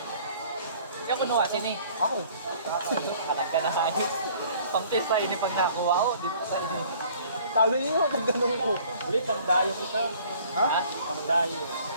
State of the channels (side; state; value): both; inverted; correlation -0.54